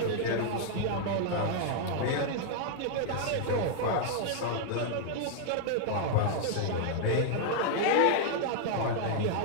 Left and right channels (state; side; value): different; both; correlation -0.01